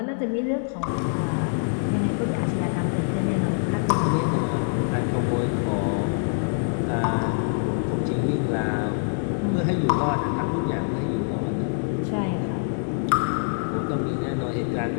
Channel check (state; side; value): silent; right; 62 dB below the other